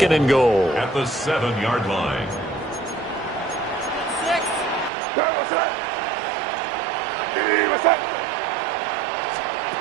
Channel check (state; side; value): drops out; left; at 4.9 s